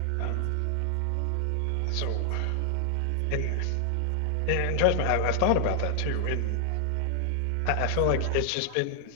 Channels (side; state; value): both; different; correlation 0.00